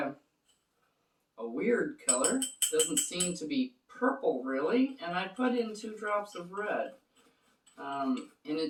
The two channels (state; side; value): identical; both; correlation 1.00